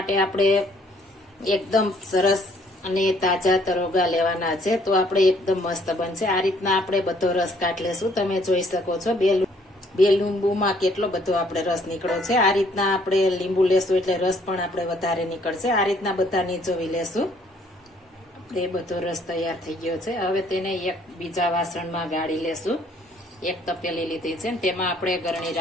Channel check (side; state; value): both; normal; correlation 0.63